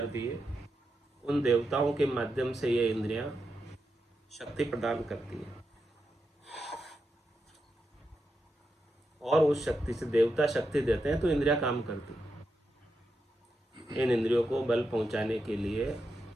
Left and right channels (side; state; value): both; normal; correlation 0.86